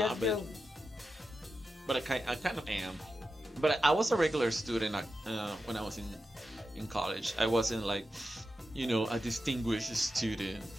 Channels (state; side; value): normal; both; correlation 0.90